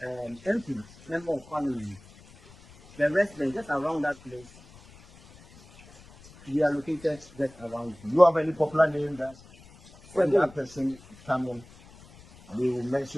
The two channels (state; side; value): noise; left; rumble, 23 dB below the sound